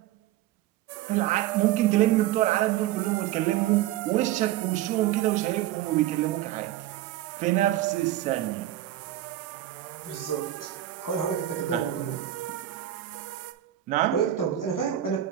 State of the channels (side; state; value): left; quieter; 13.2 dB